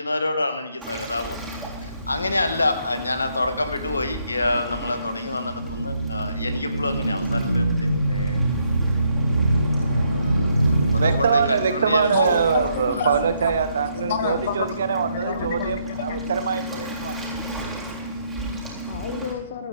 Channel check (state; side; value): inverted; both; correlation -0.73